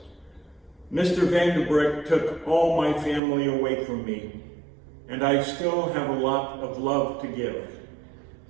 "Mr. Vandebreck took all my family away from me, and I still have a lot of love to give.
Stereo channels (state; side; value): drops out; left; at 3.2 s